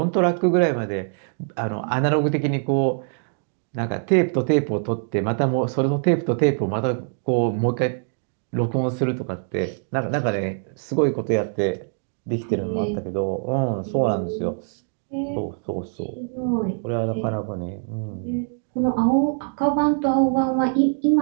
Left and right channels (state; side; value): silent; left; digital silence